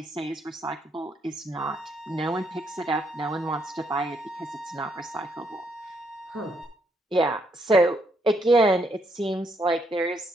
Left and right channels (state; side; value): normal; both; correlation 0.74